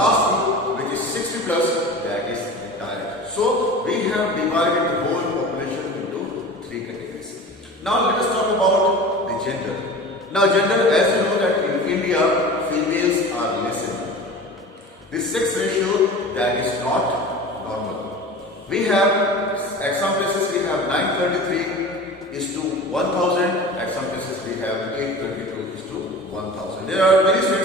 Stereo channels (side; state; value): both; normal; correlation 0.36